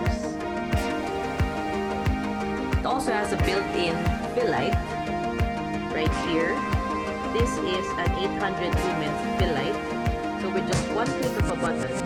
It also has a built-in fill light right here. This is an 800 lumens fill light. So with just one click of a button,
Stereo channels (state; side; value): identical; both; correlation 1.00